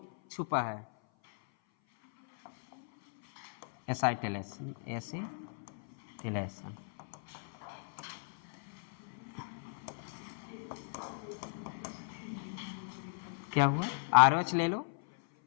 छुपा है। एसिटिलेशन, एसिटिलेशन क्या हुआ, RH ले लो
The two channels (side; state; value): right; silent; 54 dB below the other